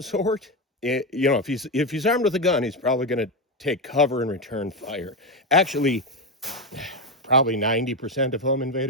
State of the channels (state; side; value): normal; both; correlation 0.11